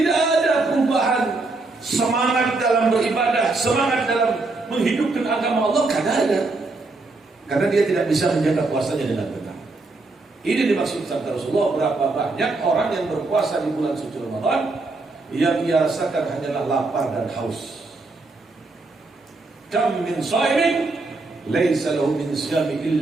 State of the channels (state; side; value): quieter; left; 3.4 dB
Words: ada perubahan semangat dalam beribadah, semangat dalam menghidupkan agama Allah, karena ada. Karena dia tidak bisa menjaga puasanya dengan benar. Ini dimaksud sabda Rasulullah, berapa banyak orang yang berpuasa di bulan suci Ramadan yang ia rasakan hanyalah lapar dan haus. Kam min shaimin laisa lahu min siyami